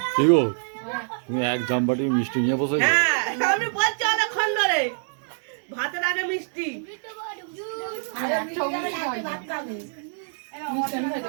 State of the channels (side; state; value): left; silent; digital silence